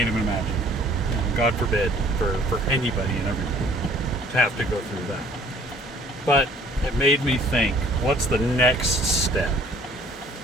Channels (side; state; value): both; normal; correlation 0.56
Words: even imagine. God forbid for anybody and everybody to have to go through that. But it made me think, what's the next step?